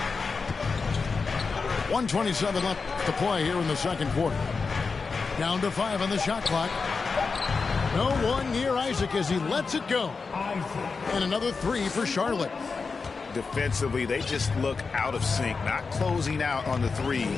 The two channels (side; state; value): right; quieter; 4.7 dB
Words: .127 left to play here in the second quarter. Down to 5 on the shot clock. No one near Isaac as he lets it go. And another 3 for Charlotte. Defensively, they just look out of sync, not closing out on the